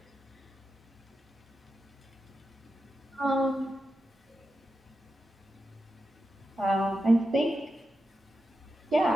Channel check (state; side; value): normal; both; correlation 0.89